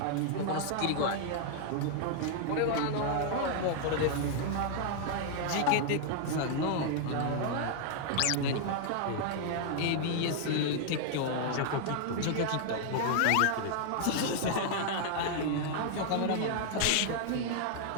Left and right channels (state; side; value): different; both; correlation 0.00